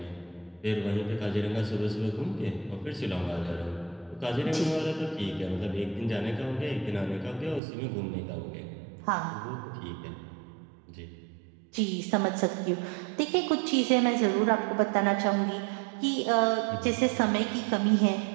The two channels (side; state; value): left; drops out; at 7.6 s